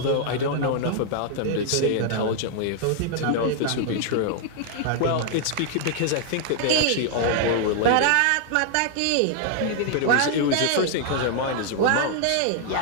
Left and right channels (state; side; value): different; both; correlation 0.00